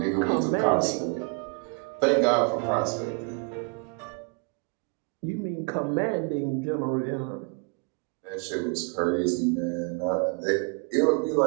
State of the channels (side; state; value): left; quieter; 33.4 dB